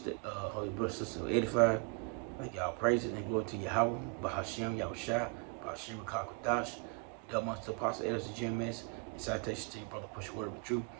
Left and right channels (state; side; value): quieter; left; 34.2 dB